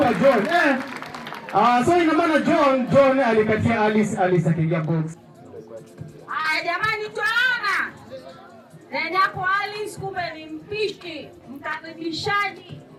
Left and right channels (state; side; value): identical; both; correlation 1.00